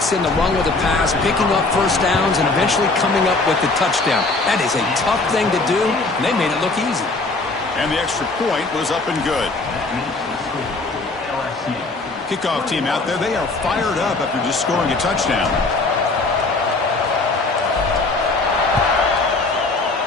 in the run with the pass, picking up first downs, and eventually coming up with the touchdown. That is a tough thing to do, and they made it look easy. And the extra point was up and good. Kickoff team out there, they are fired up after just scoring a touchdown.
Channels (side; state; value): right; quieter; 3.4 dB